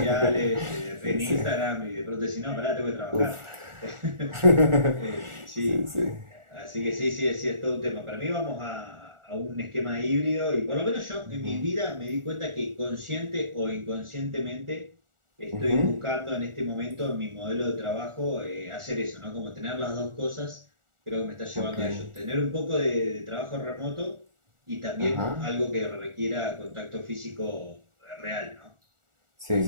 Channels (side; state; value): left; late; 1.4 ms